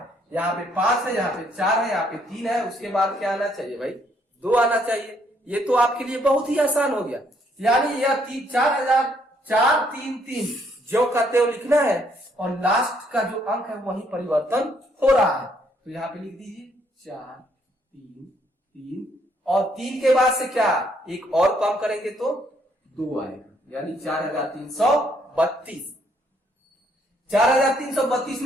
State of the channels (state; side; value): normal; both; correlation 0.69